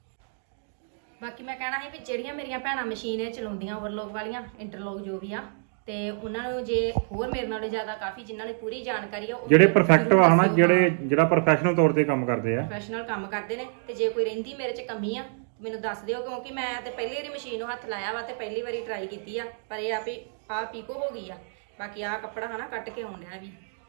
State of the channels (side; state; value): left; silent; digital silence